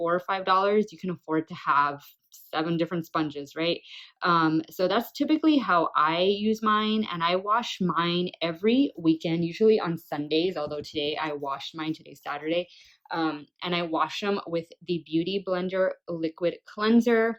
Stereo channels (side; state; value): both; identical; correlation 1.00